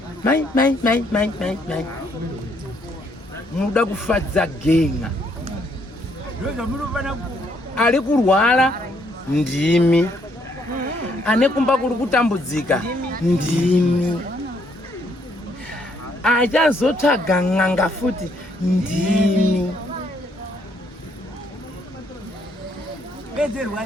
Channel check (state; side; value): normal; both; correlation 0.70